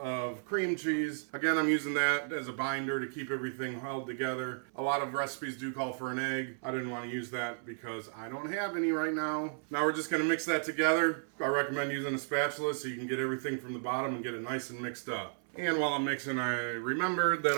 cream cheese. Again, I'm using that as a binder to keep everything held together. A lot of recipes do call for an egg. I didn't want to use that because I don't have any right now. Now we're just gonna mix that together. I recommend using a spatula so you can get everything from the bottom and get it nice and mixed up. And while I'm mixing, I remembered that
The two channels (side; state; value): left; silent; 55 dB below the other